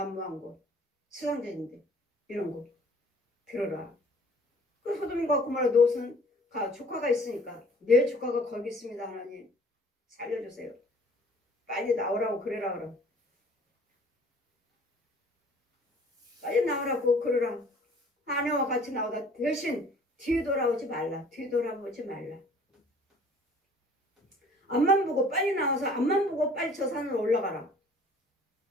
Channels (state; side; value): normal; both; correlation 0.53